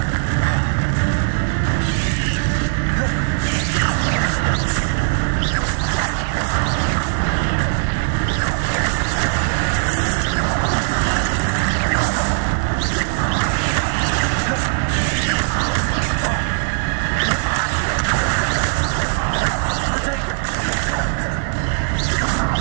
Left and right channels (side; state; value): left; silent; digital silence